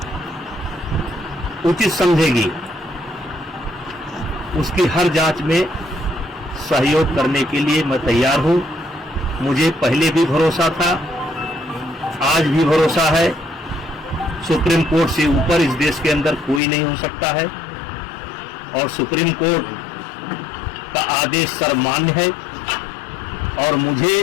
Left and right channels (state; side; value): drops out; right; at 16.6 s